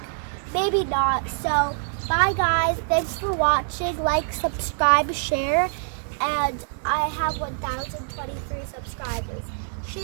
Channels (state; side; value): silent; left; 57 dB below the other